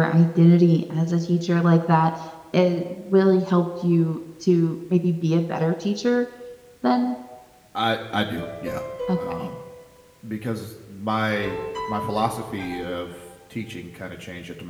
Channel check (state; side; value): identical; both; correlation 1.00